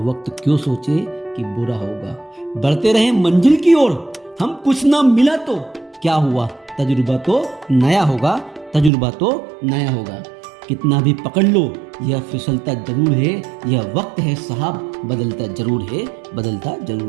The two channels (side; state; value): left; drops out; at 8.9 s